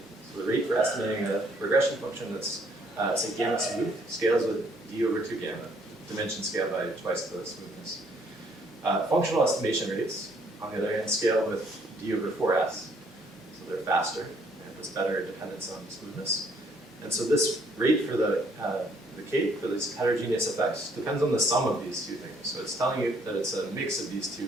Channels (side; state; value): both; normal; correlation 0.65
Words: so the rate for estimating a regression function that's, say, gamma smooth, scales with d over 2 gamma, dimension scale by twice the smoothness. Functional estimation rates, on the other hand, scale with d over 4s, so they're faster, and it's better dependence on smoothness. And so this rate for the Kate, for these heterogeneous effects, depends on the sum of these two things. So it's telling you that it's a mix of these two